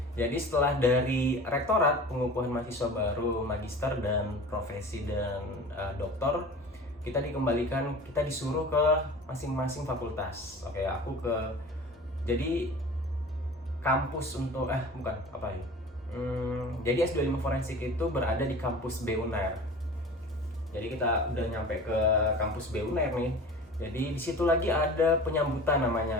jadi setelah dari rektorat pengukuhan mahasiswa baru, magister dan profesi dan doktor, kita dikembalikan, kita disuruh ke masing-masing fakultas. Oke, aku jadi kampus untuk bukan apa ya. Jadi S2 ilmu forensik itu berada di kampus B UNAIR. Jadi kita udah nyampe ke kampus B UNAIR nih. Jadi di situ lagi ada penyambutan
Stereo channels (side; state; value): both; normal; correlation 0.39